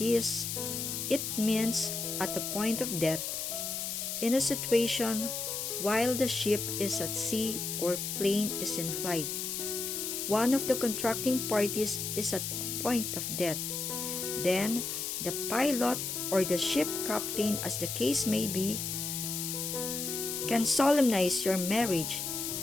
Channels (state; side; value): noise; left; hiss, 3 dB below the sound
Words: it means at the point of death, in a situation while the ship is at sea or plane is in flight. One of the contracting parties is at a point of death. Then, the pilot or the ship captain, as the case may be, can solemnize your marriage